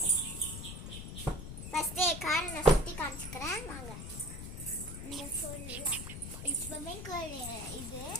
ஃபர்ஸ்ட் காரை நான் சுற்றி காமிச்சுக்கிறேன். வாங்க. இந்த ஃபுல்லாக ஸ்விம்மிங் பூல் இது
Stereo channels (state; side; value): noise; left; rumble, 8 dB below the sound